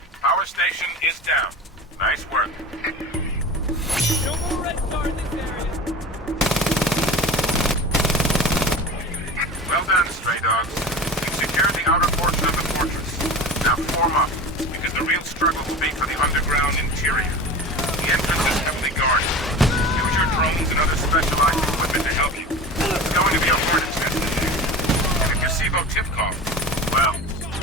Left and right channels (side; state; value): both; normal; correlation 0.33